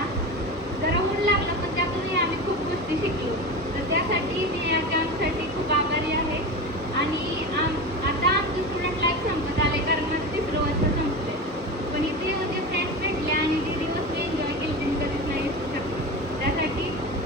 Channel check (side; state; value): both; normal; correlation 0.26